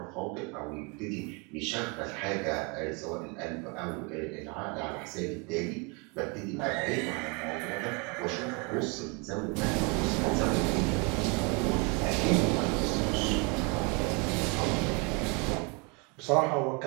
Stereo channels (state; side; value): quieter; left; 31.4 dB